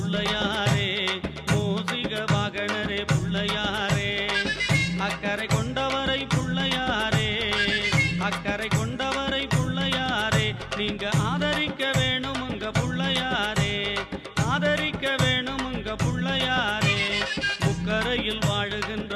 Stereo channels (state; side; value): identical; both; correlation 1.00